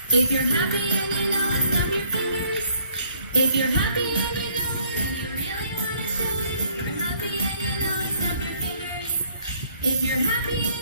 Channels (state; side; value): inverted; both; correlation -0.64